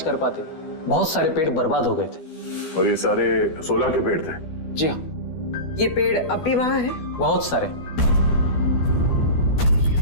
कर पाते बहुत सारे पेड़ बर्बाद हो गए थे। और ये सारे 16 के पेड़ थे? जी हाँ। ये पेड़ अब भी वहां है? बहुत सारे।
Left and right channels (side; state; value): right; late; 12 ms